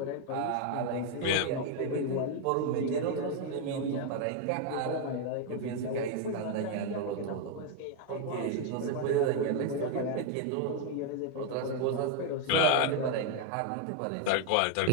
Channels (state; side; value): different; both; correlation 0.01